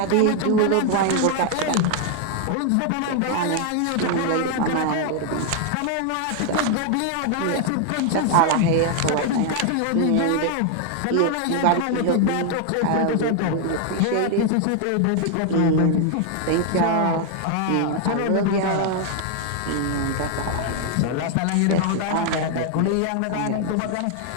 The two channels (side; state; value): both; different; correlation 0.00